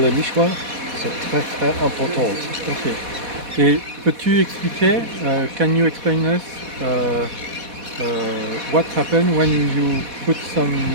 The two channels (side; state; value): left; late; 4.1 ms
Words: nichoir, c'est très très important. Ok. Et peux-tu expliquer, can you explain us what happened when you put some